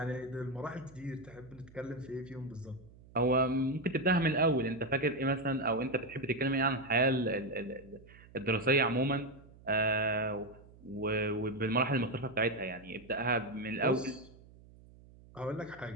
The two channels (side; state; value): right; noise; hum, 23 dB below the sound